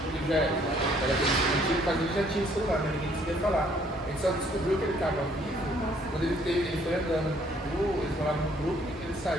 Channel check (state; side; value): normal; both; correlation 0.63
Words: já era antigo, mas ele já tinha celular, mas ninguém conseguia falar. A gente só descobriu que ele estava vivo quando ele foi andando. Eles moravam no grupo, ele